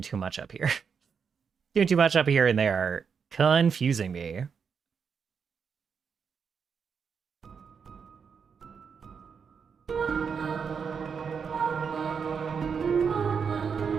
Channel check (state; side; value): quieter; left; 6.3 dB